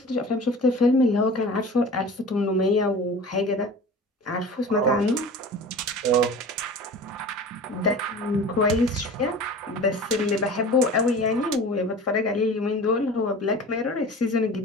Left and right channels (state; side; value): normal; both; correlation 0.38